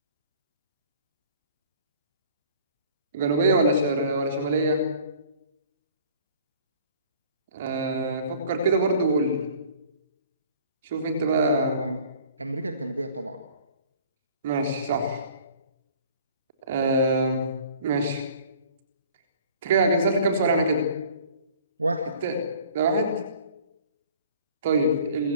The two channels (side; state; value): both; inverted; correlation -0.51